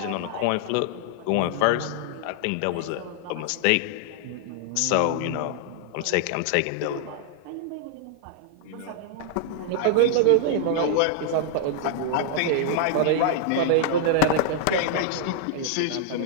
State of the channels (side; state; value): both; different; correlation -0.01